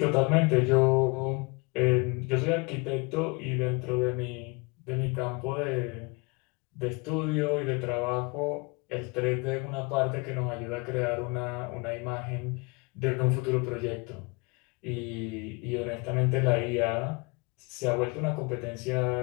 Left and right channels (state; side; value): quieter; right; 28.8 dB